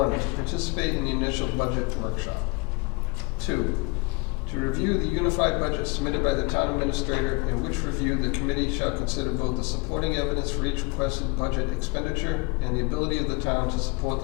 to participate in the initial budget workshop. 2, to review the unified budget submitted by the town administrator, in which review the committee shall consider both the supporting evidence for each requested budget expenditure and the ability of the town to support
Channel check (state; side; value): quieter; right; 27.8 dB